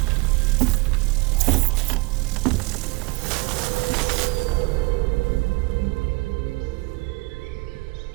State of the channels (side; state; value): left; quieter; 25.0 dB